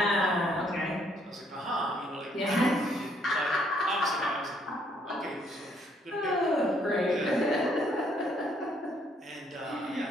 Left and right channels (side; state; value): both; normal; correlation 0.68